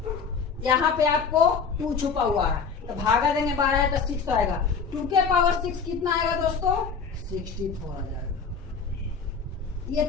यहाँ पे आपको 2 छुपा हुआ है, तो भागा देंगे 12 है तो 6 आएगा। 2 के पावर 6 कितना आएगा दोस्तों, 64 आ जाएगा। ये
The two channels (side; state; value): right; quieter; 5.6 dB